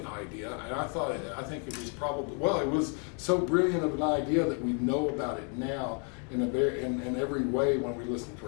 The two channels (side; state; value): right; quieter; 38.9 dB